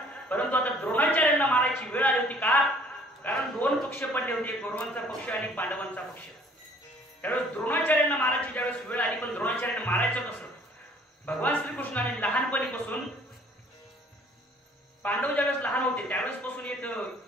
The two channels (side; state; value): both; normal; correlation 0.56